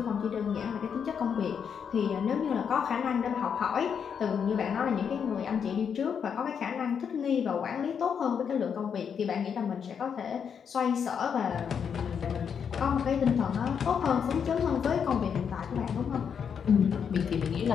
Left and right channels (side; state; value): right; quieter; 7.2 dB